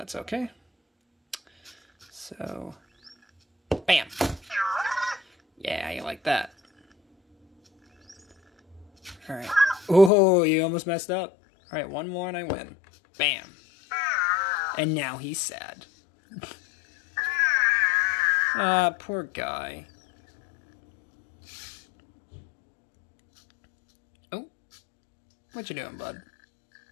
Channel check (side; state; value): right; drops out; at 10.1 s